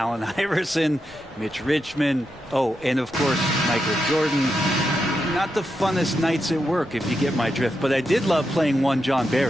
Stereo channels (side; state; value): both; normal; correlation 0.85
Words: Iverson, Mitch Richmond, and of course, Michael Jordan, not the funnest nights at work, if you get my drift. But I did love playing one John